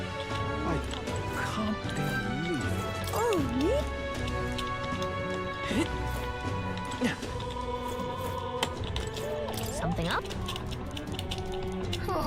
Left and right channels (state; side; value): identical; both; correlation 1.00